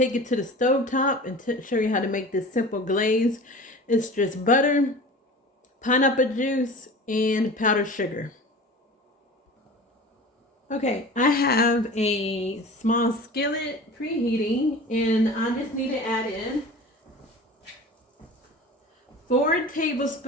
it to the stove top and show you how to make this simple glaze. It's just butter, pineapple juice, and powdered sugar. Okay, I have a small skillet preheating, and I just need to add in 4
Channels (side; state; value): both; normal; correlation 0.37